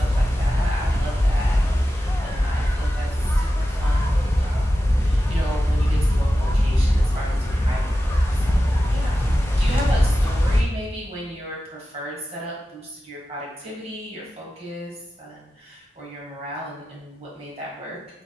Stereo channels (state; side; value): normal; both; correlation 0.93